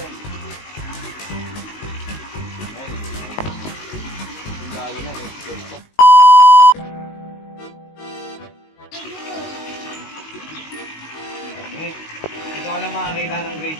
Lalo na eh. Dito ka lang makakita ng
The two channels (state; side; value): late; right; 19 ms